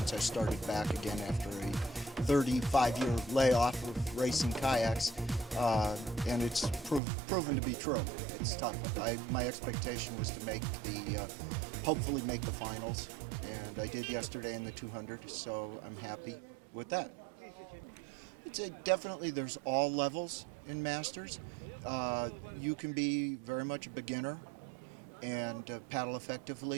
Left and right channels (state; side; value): drops out; left; at 7.0 s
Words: I started back again after a 35-year layoff of racing kayaks, and it's proven to be true. It's tough. My expectation was to hopefully make the finals, and I did yesterday in the 200, so I'm happy with that. I'd say definitely there's all levels in Masters. You can be very much a beginner and paddle